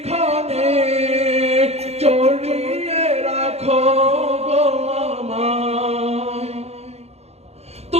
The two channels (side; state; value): left; late; 0.31 ms